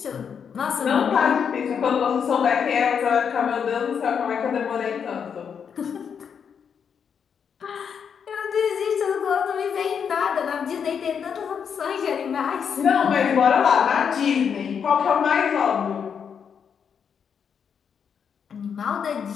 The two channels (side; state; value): right; quieter; 7.1 dB